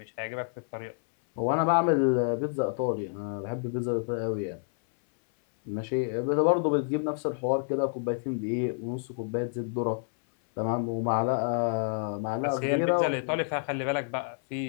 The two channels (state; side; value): silent; right; 59 dB below the other